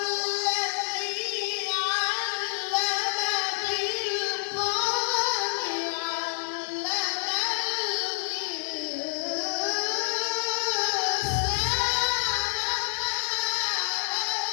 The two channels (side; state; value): right; silent; 57 dB below the other